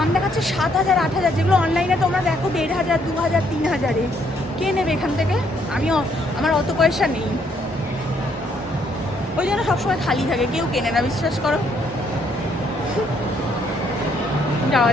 দেখাচ্ছে 7,000 8,000, যেগুলো অনলাইনে তোমরা দেখো 1,500 2,000 3,000-এ। কে নেবে এখান থেকে? আমার অত পয়সা নেই, ওই জন্য সবসময় খালি থাকে, কেউ কেনে না, বিশ্বাস করো। যাওয়া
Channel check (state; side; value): normal; both; correlation 0.69